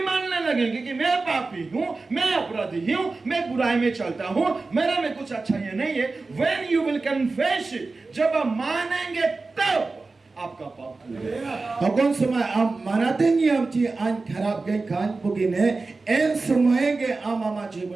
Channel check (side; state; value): left; quieter; 3.7 dB